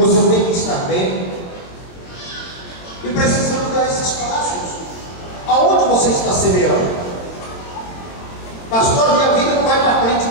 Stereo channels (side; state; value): right; late; 23 ms